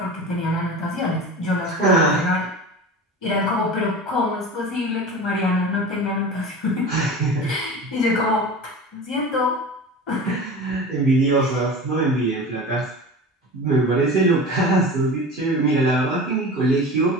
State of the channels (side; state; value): both; normal; correlation 0.33